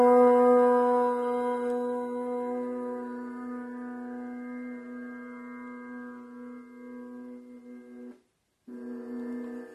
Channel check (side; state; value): both; identical; correlation 1.00